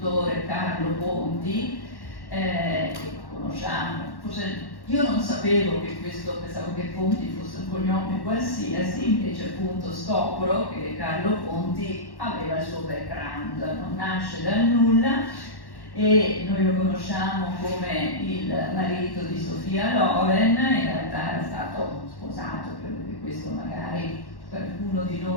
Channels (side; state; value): right; late; 1.1 ms